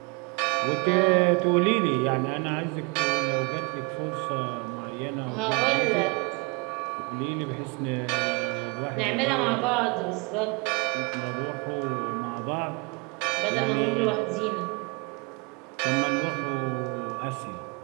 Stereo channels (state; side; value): quieter; left; 30.4 dB